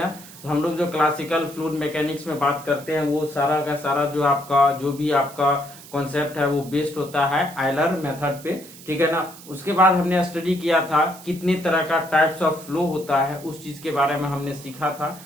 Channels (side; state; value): right; noise; hiss, 18 dB below the sound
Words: तो हम लोग जो क्लासिकल फ्लूइड मैकेनिक्स में बात करते हैं वो सारा का सारा जो भी आपका कॉन्सेप्ट है वो बेस्ड होता है आयलर मेथड पे, ठीक है ना। उसके बाद हमने स्टडी किया था कितने तरह का टाइप्स ऑफ फ्लो होता है, उस चीज के बारे में हमने सीखा था।